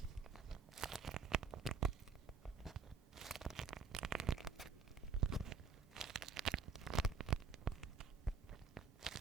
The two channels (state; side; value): quieter; left; 5.0 dB